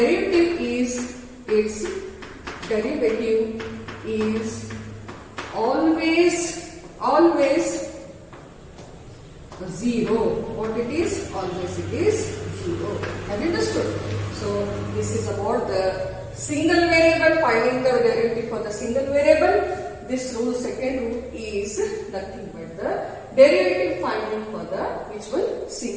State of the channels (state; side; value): identical; both; correlation 1.00